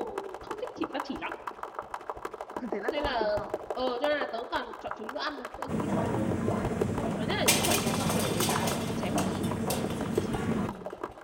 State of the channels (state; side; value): identical; both; correlation 1.00